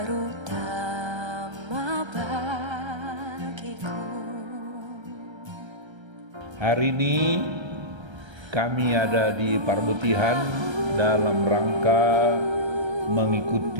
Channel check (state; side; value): late; left; 1.3 ms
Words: bagiku. Hari ini kami ada di Parbutihan dalam rangka